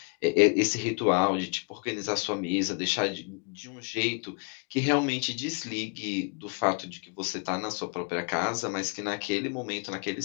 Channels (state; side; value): quieter; right; 36.4 dB